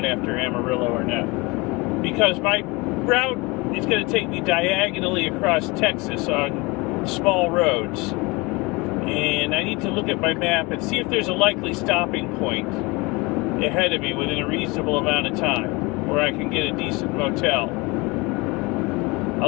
after Amarillo or not, because my route is going to take me diagonally across Texas on small roads, and I need to look at my map and see if there's a likely stopping point ahead of me within a reasonable amount of time where I can get a decent motel. A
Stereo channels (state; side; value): quieter; right; 25.1 dB